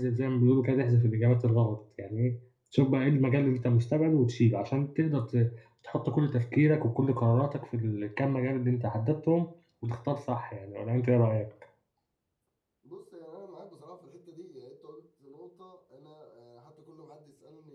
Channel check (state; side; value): identical; both; correlation 1.00